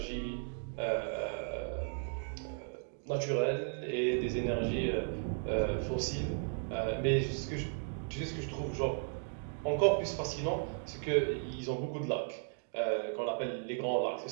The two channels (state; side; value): silent; left; 54 dB below the other